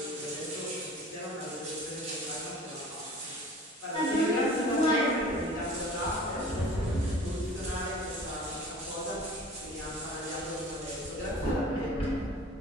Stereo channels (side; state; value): both; normal; correlation 0.44